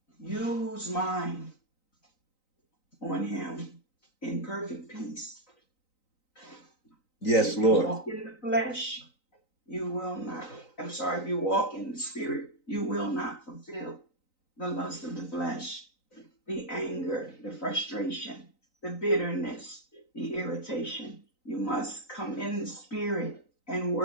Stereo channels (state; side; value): late; right; 3.9 ms